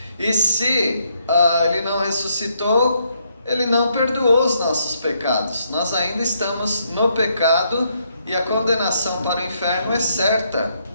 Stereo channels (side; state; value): both; inverted; correlation -0.74